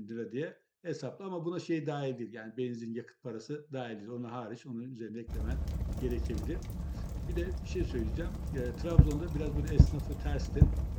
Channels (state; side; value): identical; both; correlation 1.00